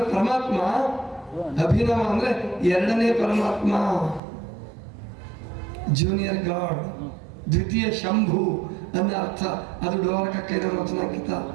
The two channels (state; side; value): drops out; left; at 4.2 s